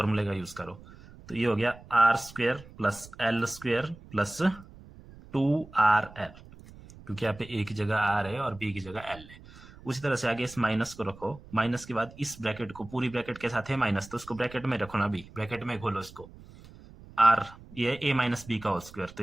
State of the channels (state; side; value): noise; right; rumble, 20 dB below the sound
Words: का यूज करो, तो ये हो गया R square plus L square plus 2rl, क्योंकि यहाँ पे ए की जगह आर है और बी की जगह एल है। उसी तरह से आगे इस माइनस को रखो, माइनस के बाद इस ब्रैकेट को, पूरी ब्रैकेट के साथ है माइनस, तो उसको ब्रैकेट में रखो ना, अभी ब्रैकेट में खोलो इसको, आर ये ए माइनस बी का होल स्क्वायर, तो